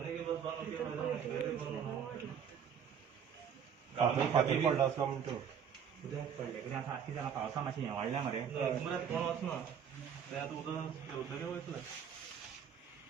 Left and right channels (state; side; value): quieter; left; 7.9 dB